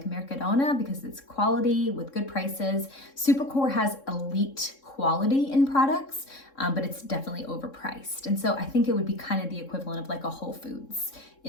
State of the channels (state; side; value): late; right; 3.7 ms